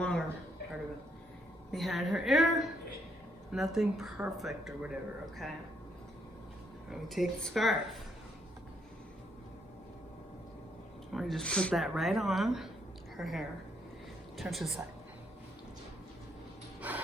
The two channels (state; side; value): normal; both; correlation 0.73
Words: part of it, behind her ear. Nothing perfect or whatever, okay? And we take the scarf. We just put that right on her hair. Turn to the side.